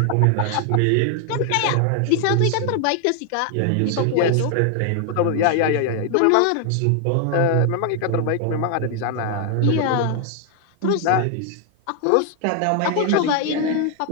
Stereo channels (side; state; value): both; different; correlation 0.00